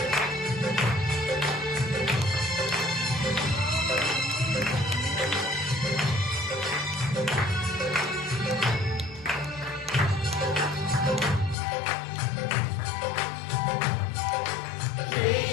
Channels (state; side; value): drops out; right; at 11.6 s